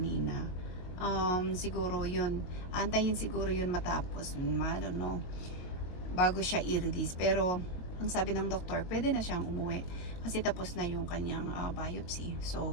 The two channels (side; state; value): right; late; 22 ms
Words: Siguro yun. Antayin siguro yun matapos. I don't know. Bago siya i-release. Pero ang sabi ng doktor, pwede na siyang umuwi kasi tapos na yung kanyang biopsy.